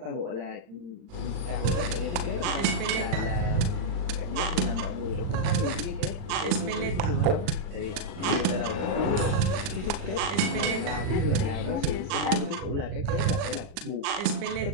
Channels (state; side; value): late; left; 39 ms